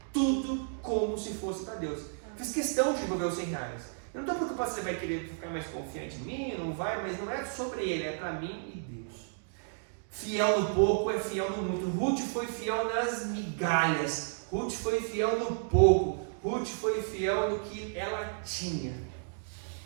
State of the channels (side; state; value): left; silent; digital silence